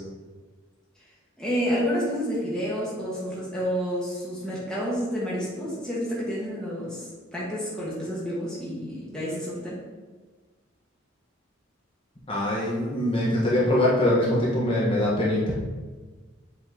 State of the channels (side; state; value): both; normal; correlation 0.54